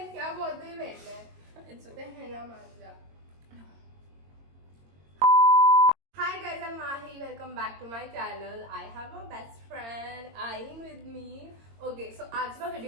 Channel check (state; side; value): late; left; 22 ms